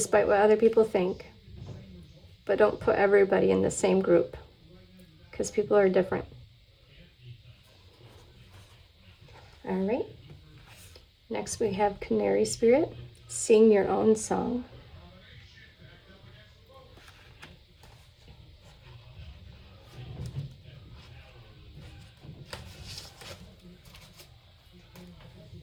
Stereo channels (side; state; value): both; identical; correlation 1.00